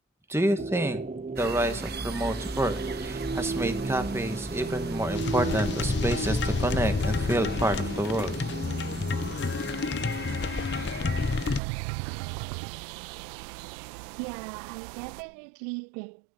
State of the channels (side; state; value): left; drops out; at 11.6 s